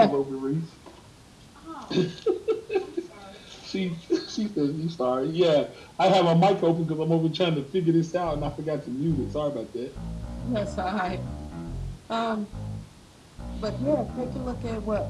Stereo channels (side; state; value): both; identical; correlation 1.00